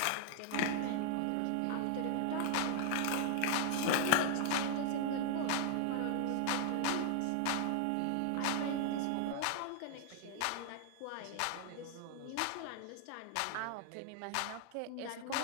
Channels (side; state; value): both; different; correlation 0.00